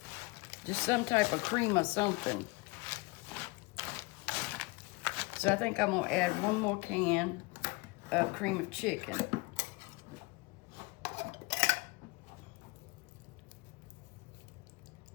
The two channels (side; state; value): right; quieter; 25.8 dB